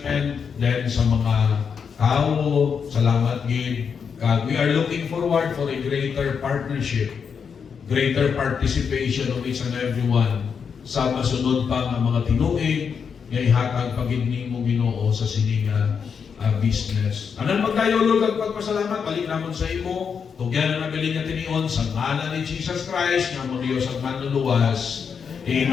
then sa mga tao, salamat gid. God, we are looking forward for a greater partnership, greater participation of each and everyone sa masunod pa nga mga tinuig nga ihatag pagid nimo Ginoo sa sininga business. Anan magdayo Lord ang pagpasalamat balik namon sa imo. Tugyan na nabilin nga tinion sa ngalan ni Jesus Christ nga mo Dios ang manluluwas.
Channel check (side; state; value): right; quieter; 6.5 dB